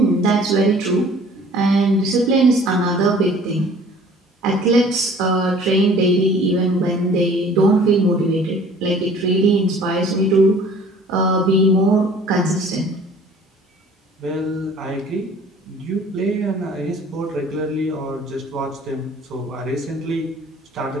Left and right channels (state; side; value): normal; both; correlation 0.51